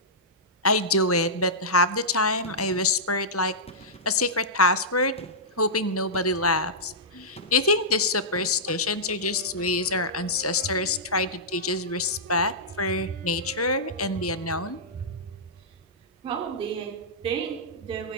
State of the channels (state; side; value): normal; both; correlation -0.14